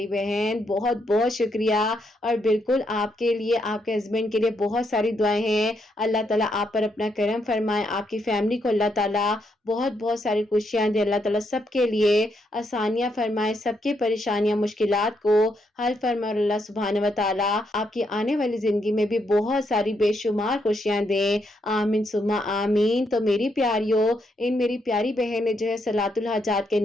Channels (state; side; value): normal; both; correlation 0.78